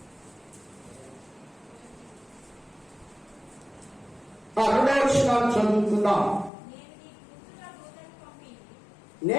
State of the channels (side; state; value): right; drops out; at 6.5 s